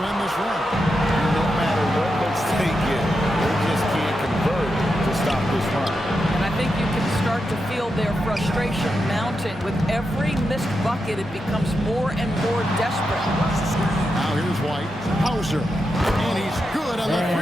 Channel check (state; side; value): normal; both; correlation 0.87